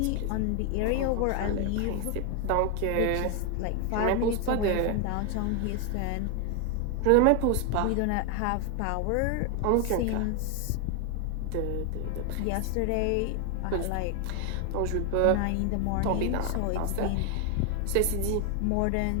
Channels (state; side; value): different; both; correlation 0.01